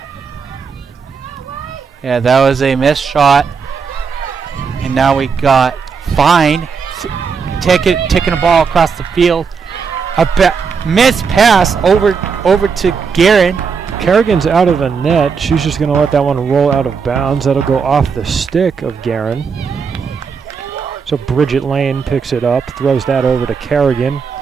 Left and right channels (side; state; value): left; quieter; 5.8 dB